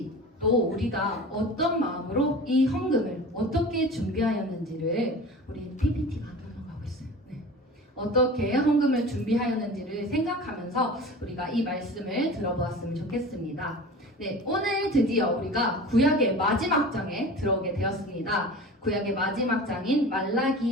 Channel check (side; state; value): both; normal; correlation 0.36